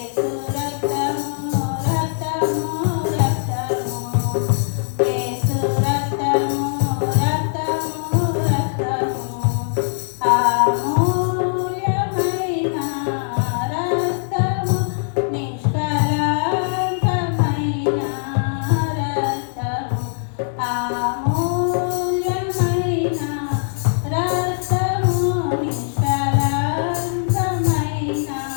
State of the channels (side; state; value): right; silent; 65 dB below the other